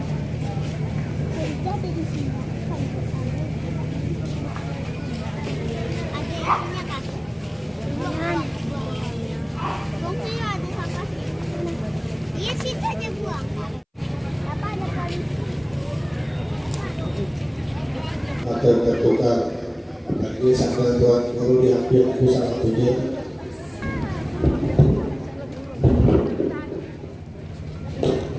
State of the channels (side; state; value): both; identical; correlation 1.00